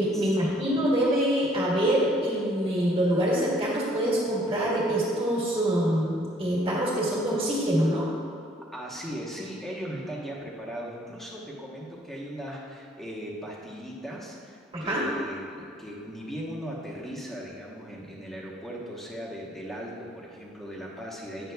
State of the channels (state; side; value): normal; both; correlation 0.61